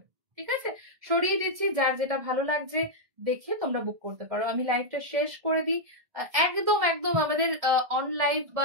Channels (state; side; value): late; left; 1.7 ms